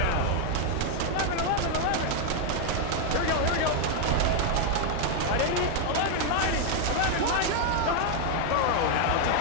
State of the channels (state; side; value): different; both; correlation 0.00